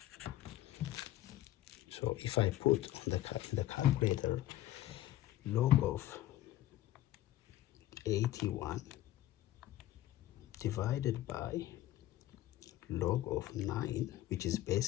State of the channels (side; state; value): right; quieter; 14.1 dB